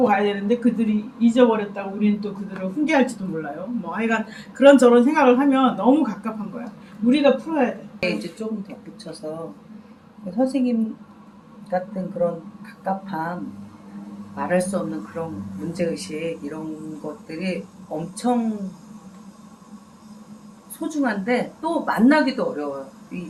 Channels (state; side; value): identical; both; correlation 1.00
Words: 가야 되는데 그들이 잊어버렸다고 우리는 또 그들을 훈계할지도 몰라요. 뭐 하여간 그런저런 생각을 하면 너무 갑갑한 거야. 우리가 풀어야 돼. 이제 조금 덧붙여서 선생님 같은 그런 갑갑함, 말할 수 없는 그런 문제의식, 이런 것들이 엄청 소중한데 또 만나기도 어려워요.